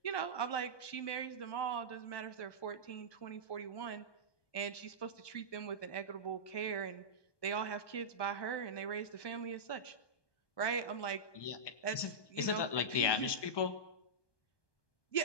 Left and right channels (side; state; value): right; late; 1.2 ms